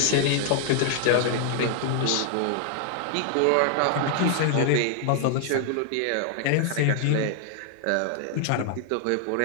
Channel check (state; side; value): different; both; correlation 0.00